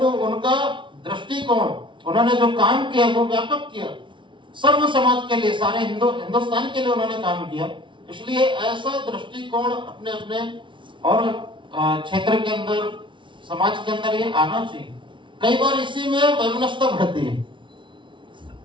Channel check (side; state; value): left; late; 0.24 ms